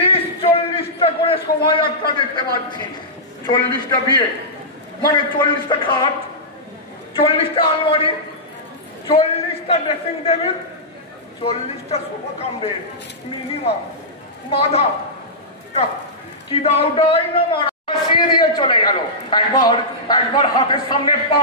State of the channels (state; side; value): normal; both; correlation -0.14